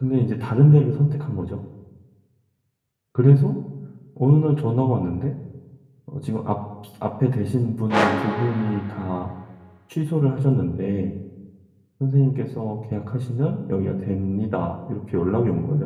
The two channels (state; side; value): identical; both; correlation 1.00